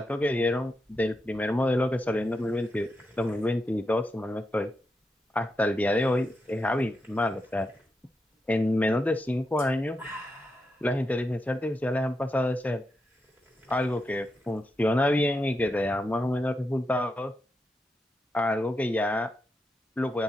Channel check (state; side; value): normal; both; correlation 0.86